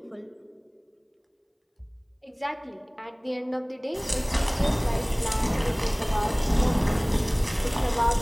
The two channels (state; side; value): identical; both; correlation 1.00